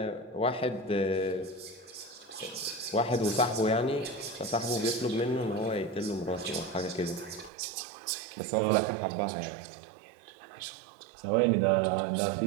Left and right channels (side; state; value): left; drops out; at 7.5 s